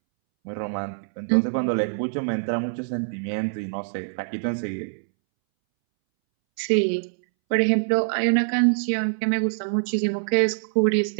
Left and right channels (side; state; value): left; silent; 62 dB below the other